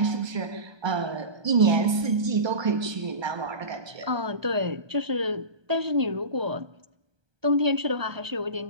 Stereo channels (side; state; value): left; late; 1.2 ms